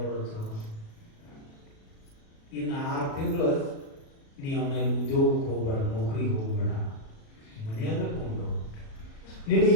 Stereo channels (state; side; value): late; right; 37 ms